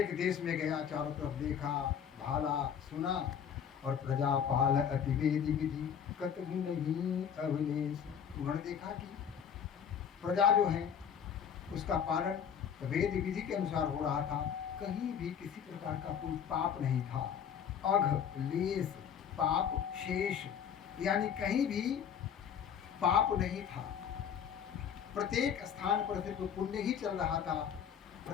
देश में गया, चारों तरफ देखा, भाला, सुना और प्रजापाल अतिवेदी विधि कतहु नहीं अवलेश। उन्होंने देखा कि प्रजा जो है उसका पालन वेद विधि के अनुसार हो रहा था, कहीं भी किसी प्रकार का कोई पाप नहीं था, अघ लेस पाप शेष, यानी कहीं भी पाप नहीं था। प्रत्येक स्थान पर सिर्फ पुण्य ही चल रहा था।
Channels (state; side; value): quieter; right; 8.0 dB